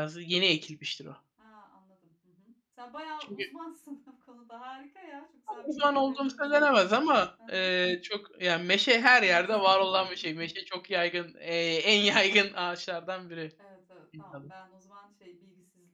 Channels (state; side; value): identical; both; correlation 1.00